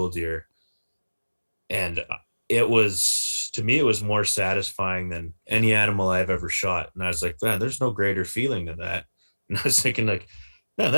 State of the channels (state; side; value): inverted; both; correlation -1.00